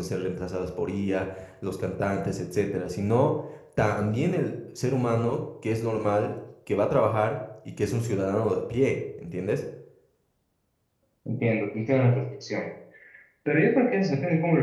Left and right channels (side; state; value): both; identical; correlation 1.00